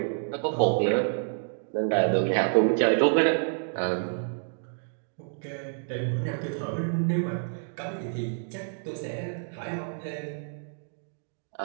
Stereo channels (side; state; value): left; silent; digital silence